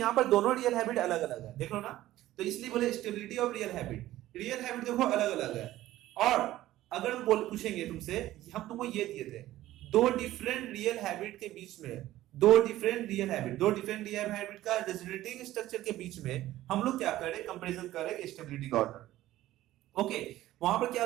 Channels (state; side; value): quieter; left; 15.0 dB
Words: पर दोनों रियल हैबिट अलग अलग है, देख लो ना, तो इसलिए बोले stability of real habit, real habit देखो अलग अलग है। और अगर हम पूछेंगे तुमसे, हम तुमको ये दिए थे दो डिफरेंट रियल हैबिट के बीच में, दो डिफरेंट रियल हैबिट का रेजोनेटिंग स्ट्रक्चर के बीच में हम लोग क्या करें, कंपैरिजन करें स्टेबिलिटी का ऑर्डर। ओके, वहां पर